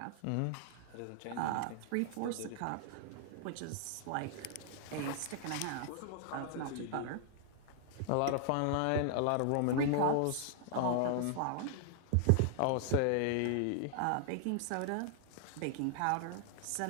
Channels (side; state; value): both; different; correlation -0.01